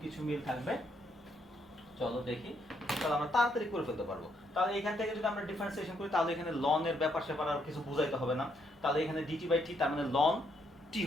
কিছু মিল থাকবে, চলো দেখি, তাহলে আমরা তাড়াতাড়ি করে ফেলতে পারবো। তাহলে এখান থেকে যদি আমরা ডিফারেন্সিয়েশন করি তাহলে এখানে লন এর ব্যাপার স্যাপার আর কিছু বুঝাইতে হবে না। তাহলে এখানে ডিটি বাই টি তার মানে লন টি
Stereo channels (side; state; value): both; normal; correlation 0.74